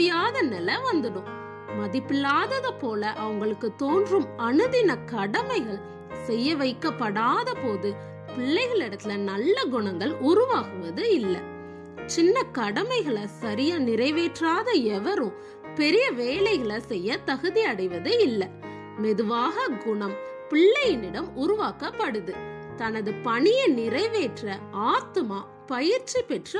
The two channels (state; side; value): identical; both; correlation 1.00